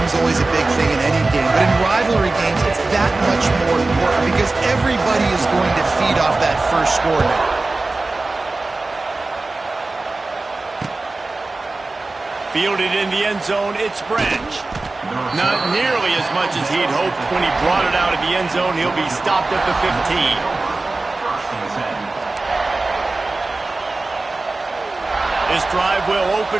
is always a big thing in any game, but in rivalry games, it's that much more important because everybody is going to feed off that first score now. Fielded in the end zone, it's Branch. Not nearly as much as he'd hoped when he brought it out of the end zone. He'll be stopped at the 15. This drive will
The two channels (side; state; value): left; quieter; 3.3 dB